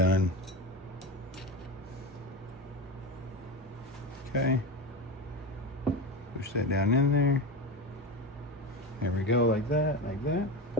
Okay. Push that down in there. There we go, like that, like that.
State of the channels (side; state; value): both; normal; correlation 0.22